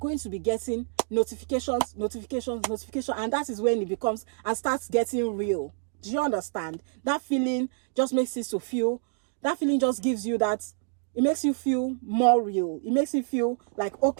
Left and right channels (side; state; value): left; silent; digital silence